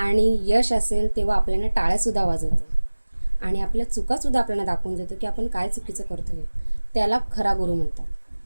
यश असेल तेव्हा आपल्याला टाळ्यासुद्धा वाजवतो, आणि आपल्या चुकासुद्धा आपल्याला दाखवून देतो की आपण काय चुकीचं करतो आहे. त्याला खरा गुरु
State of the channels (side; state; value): both; inverted; correlation -1.00